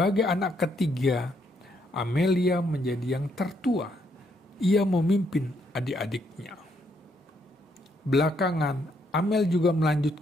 anak ketiga, Amelia menjadi yang tertua. Ia memimpin adik-adiknya. Belakangan, Amel juga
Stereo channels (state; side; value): normal; both; correlation 0.74